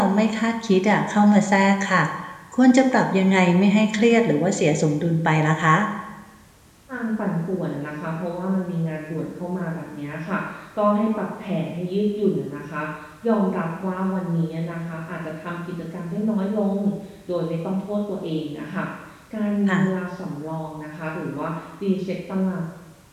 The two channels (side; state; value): both; identical; correlation 1.00